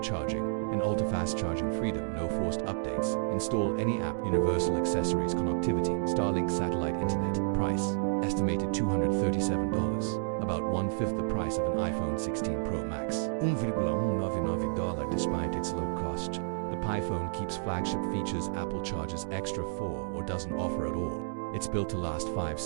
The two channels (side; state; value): left; silent; digital silence